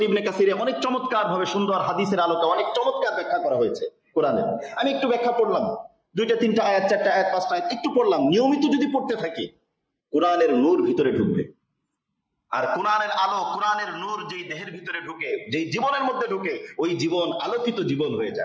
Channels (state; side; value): identical; both; correlation 1.00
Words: ইবনে কাসিরে অনেক চমৎকার ভাবে, সুন্দর হাদিসের আলোকে অনেক চমৎকার ব্যাখ্যা করা হয়েছে কোরআনের। আমি একটু ব্যাখ্যা পড়লাম, 2-3টা আয়াত, 4টা আয়াত, 5টা আয়াত একটু পড়লাম। নিয়মিত যদি পড়তে থাকি, কোরআনের নূর ভিতরে ঢুকবে। আর কোরআনের আলো, কোরআনের নূর যেই দেহের ভিতরে ঢুকে, যেই জীবনের মধ্যে ঢুকে, ওই জীবন আলোকিত জীবন হয়ে